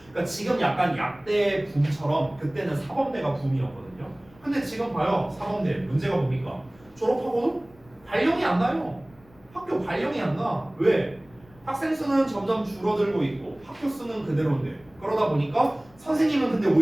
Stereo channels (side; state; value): left; noise; rumble, 27 dB below the sound